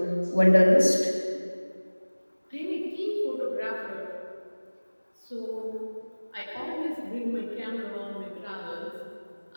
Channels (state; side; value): inverted; both; correlation -1.00